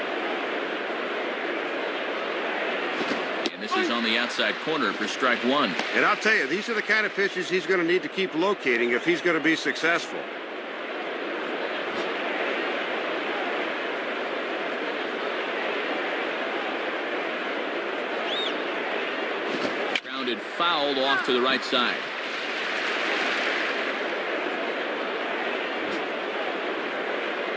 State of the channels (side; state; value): both; identical; correlation 1.00